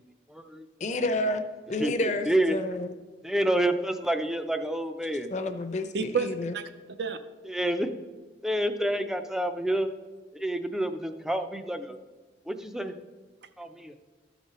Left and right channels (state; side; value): normal; both; correlation 0.68